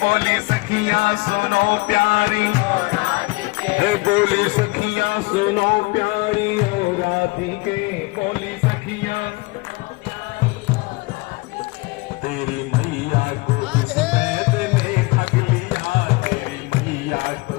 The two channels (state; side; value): quieter; right; 24.5 dB